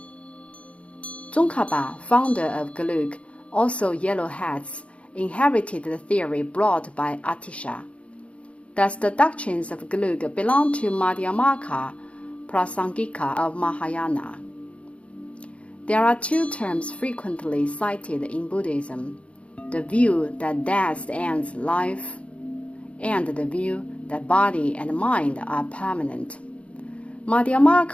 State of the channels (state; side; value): late; right; 0.062 ms